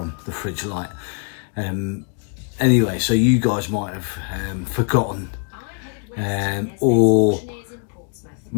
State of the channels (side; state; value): right; quieter; 38.6 dB